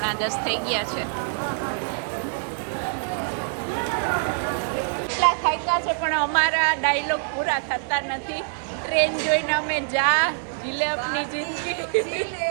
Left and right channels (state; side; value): silent; left; 62 dB below the other